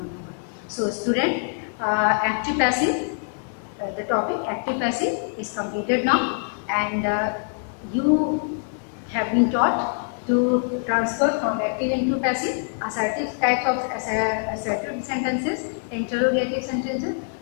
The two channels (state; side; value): silent; right; 62 dB below the other